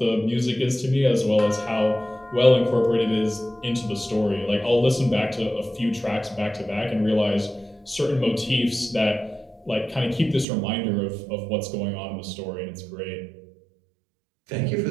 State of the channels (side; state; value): left; drops out; at 10.5 s